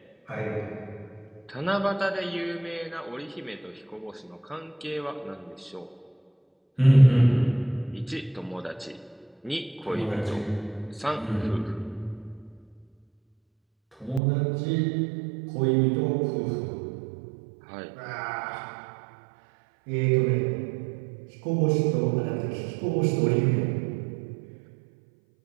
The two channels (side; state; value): left; drops out; at 14.2 s